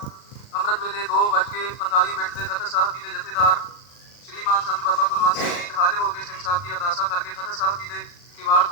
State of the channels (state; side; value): late; right; 39 ms